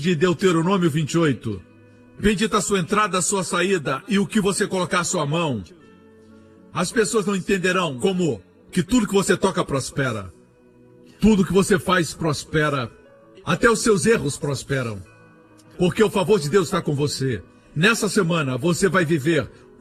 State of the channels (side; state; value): both; identical; correlation 1.00